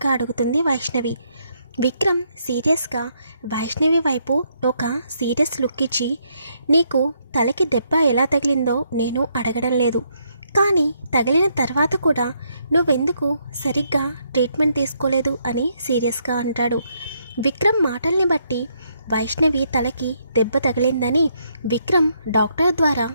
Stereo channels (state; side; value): inverted; both; correlation -0.74